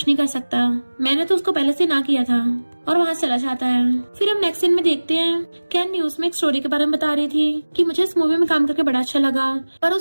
नहीं कर सकता, मैंने तो उसको पहले से ना किया था, और वहाँ चला जाता है। फिर हम नेक्स्ट सीन में देखते हैं कैन न्यूज में एक स्टोरी के बारे में बता रही थी कि मुझे इस मूवी में काम करके बड़ा अच्छा लगा, पर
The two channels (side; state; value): both; inverted; correlation -1.00